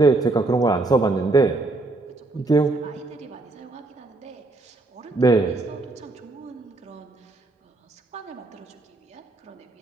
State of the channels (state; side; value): quieter; left; 3.1 dB